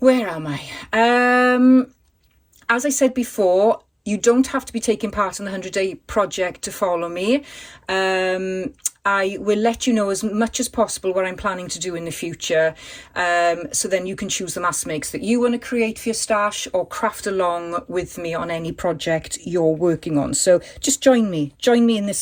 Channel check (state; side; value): identical; both; correlation 1.00